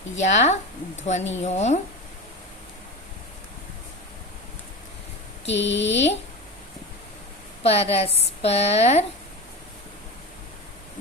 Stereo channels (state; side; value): normal; both; correlation 0.26